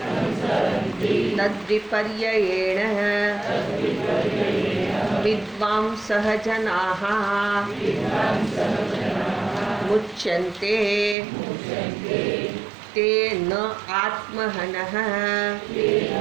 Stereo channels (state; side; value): drops out; left; at 11.2 s